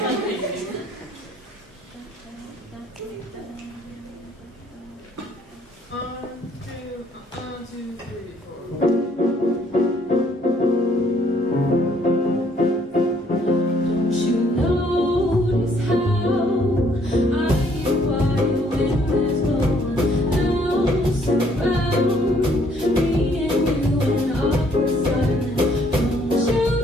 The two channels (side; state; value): both; normal; correlation 0.65